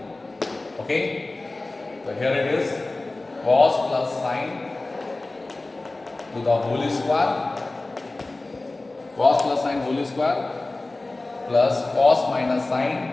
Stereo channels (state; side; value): quieter; right; 3.0 dB